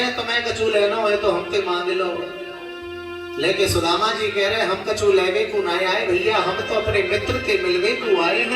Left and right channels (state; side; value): identical; both; correlation 1.00